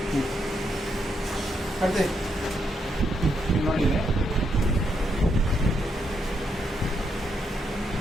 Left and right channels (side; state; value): both; normal; correlation 0.79